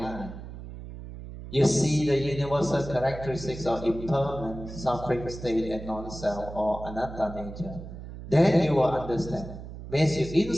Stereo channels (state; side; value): noise; right; hum, 12 dB below the sound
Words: You see the universal characteristics of impermanent, suffering state and non-self or anatta nature. Then you will understand. Once you